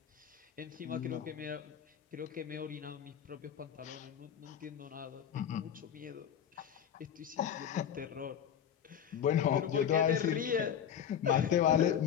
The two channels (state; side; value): quieter; right; 8.9 dB